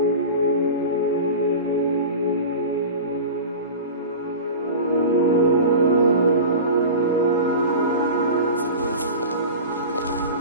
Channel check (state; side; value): inverted; both; correlation -0.32